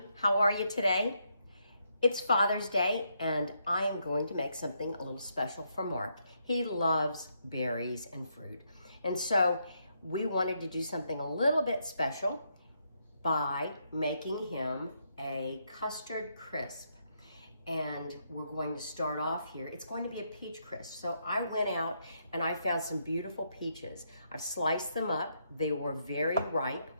how are you today? It's Father's Day and I am going to make something a little special for Mark. He loves berries and fruit. And so we wanted to do something a little bit special by making him a custard crisp. And we're going to start off here. It's going to be a peach crisp. So I went out and I found some beautiful peaches. I've sliced them up. They were very ripe.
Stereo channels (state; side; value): inverted; both; correlation -0.77